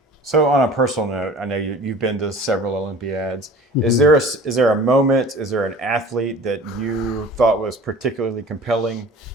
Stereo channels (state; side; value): normal; both; correlation 0.43